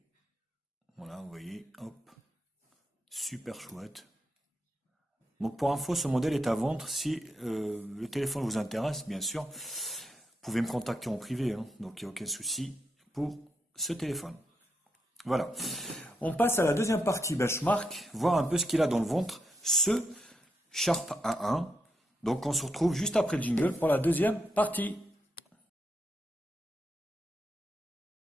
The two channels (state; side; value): normal; both; correlation 0.81